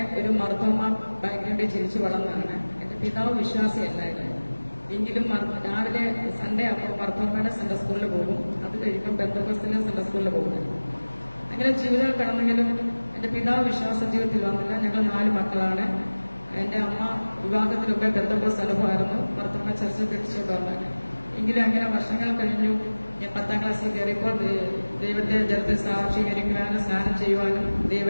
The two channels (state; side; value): inverted; both; correlation -1.00